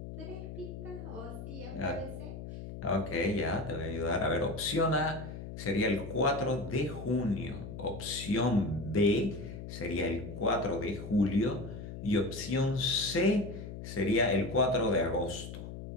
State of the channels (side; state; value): left; noise; hum, 10 dB below the sound